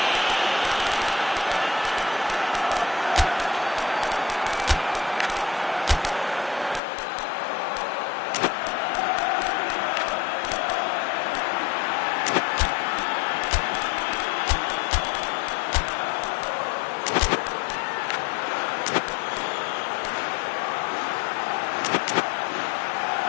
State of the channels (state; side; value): drops out; right; at 6.8 s